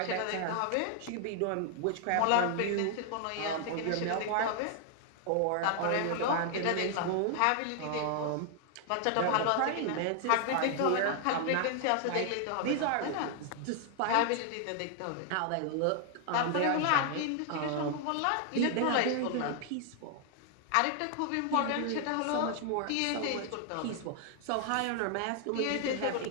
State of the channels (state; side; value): different; both; correlation 0.00